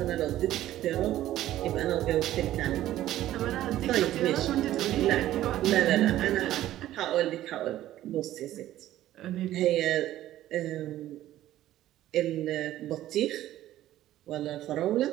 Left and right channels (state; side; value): quieter; left; 13.7 dB